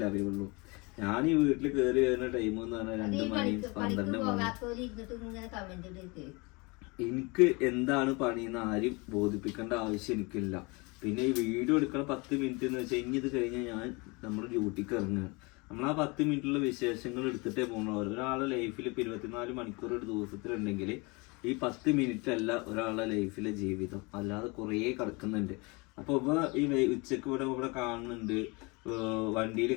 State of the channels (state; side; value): quieter; right; 27.7 dB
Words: അറിയുള്ളൂ. ഞാൻ ഈ വീട്ടിൽ കയറി വരുന്ന ടൈം എന്ന് പറഞ്ഞാൽ 2 മണി 12 മണി. എനിക്ക് എന്താണ് പണിയെന്ന് ആരും ബോധിപ്പിക്കേണ്ട ആവശ്യം എനിക്കില്ല. പിന്നെ ഈ വീഡിയോ എടുക്കണ 10 മിനിറ്റ് എന്ന് വെച്ചാൽ ഇനി ഇത് കഴിഞ്ഞാൽ ഞാൻ നമ്മുടെ ഡ്യൂട്ടിക്ക് ഇറങ്ങുകയാണ്. നമ്മൾ ആ 10 മിനിറ്റുള്ള വിശേഷങ്ങൾ എടുത്തിട്ടേ പോകണം. ഒരാളുടെ ലൈഫിൽ ഇപ്പൊ 24 മണിക്കൂർ ഒരു ദിവസത്തിലുണ്ടെങ്കിൽ ഈ 10 മിനിറ്റ് അല്ല ഒരാളുടെ ലൈഫിലെ ജീവിതം, അല്ലാതെ കുറേ കിടക്കുന്നുണ്ട്. അപ്പൊ ഈ ഉച്ചക്ക് ഇവിടെ കാണുന്നുണ്ട്, വണ്ടിയിൽ